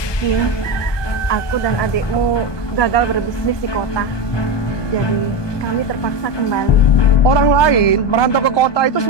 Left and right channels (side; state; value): right; late; 1.2 ms